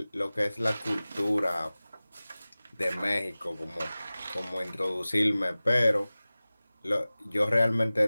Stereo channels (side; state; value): both; inverted; correlation -0.98